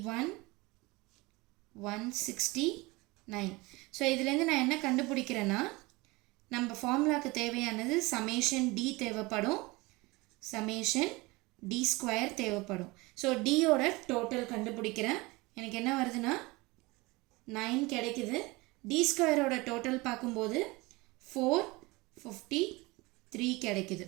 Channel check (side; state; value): left; quieter; 23.2 dB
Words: 169. ஸோ இதுலேருந்து நான் என்ன கண்டுபிடிக்கிறேன்னா நம்ம ஃபார்முலாவுக்கு தேவையானது சமேஷன் டி தேவைப்படும், சமேஷன் டி ஸ்கொயர் தேவைப்படும். ஸோ டியோட டோட்டல் கண்டுபிடிக்கிறேன். எனக்கு என்ன வருதுன்னா 9 கிடைக்குது. டி ஸ்கொயரோட டோட்டல் பார்க்கும்போது 453 கிடைக்குது.